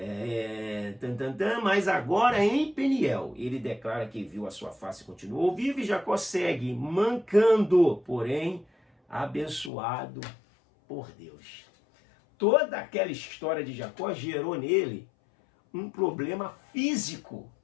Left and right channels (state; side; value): drops out; right; at 9.7 s